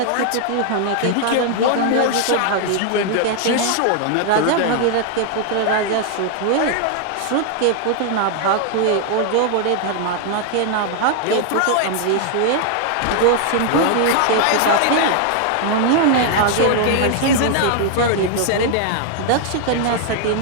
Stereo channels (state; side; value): different; both; correlation 0.00